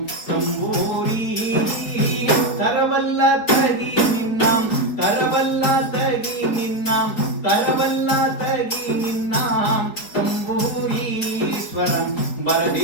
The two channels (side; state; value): right; late; 4.5 ms